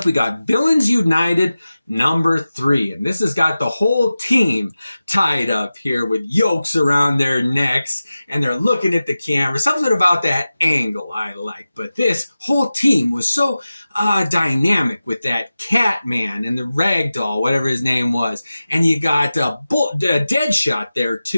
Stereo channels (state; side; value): inverted; both; correlation -0.95